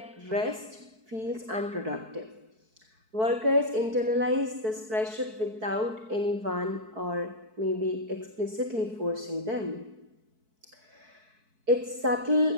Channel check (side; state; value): left; late; 4.6 ms